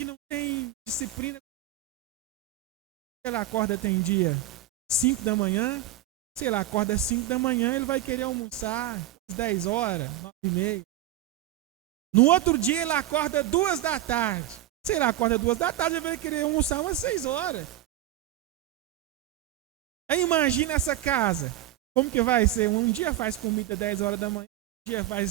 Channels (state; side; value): quieter; left; 12.5 dB